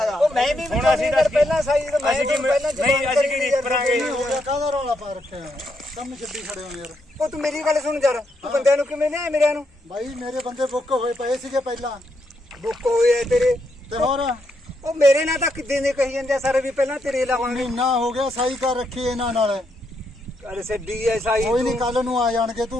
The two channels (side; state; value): both; normal; correlation 0.79